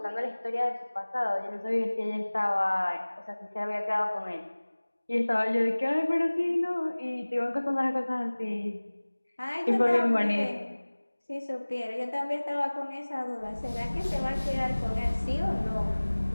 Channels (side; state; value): both; inverted; correlation -1.00